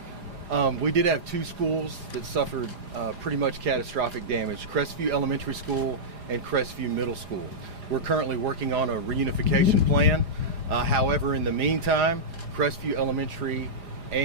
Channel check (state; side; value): late; left; 4.9 ms